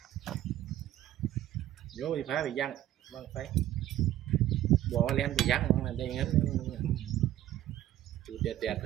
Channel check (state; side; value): quieter; left; 13.3 dB